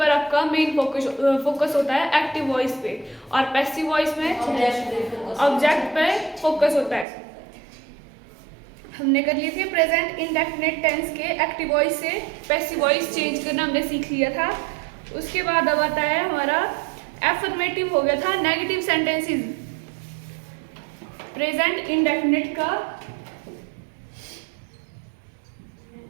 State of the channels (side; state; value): left; drops out; at 7.1 s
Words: आपका मेन फोकस होता है एक्टिव वॉइस पे। और पैसिव वॉइस में ऑब्जेक्ट पे फोकस होता है। हमने कर लिए थे प्रेजेंट इंडेफिनिट टेंस के एक्टिव वॉइस से पैसिव वॉइस चेंज करना हमने सीख लिया था। उसके बाद अब आता है हमारा एफर्मेटिव हो गया था नेगेटिव सेंटेंसेस। प्रेजेंट इंडेफिनिट का